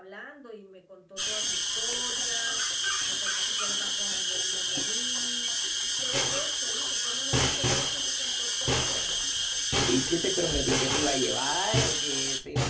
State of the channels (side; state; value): both; identical; correlation 1.00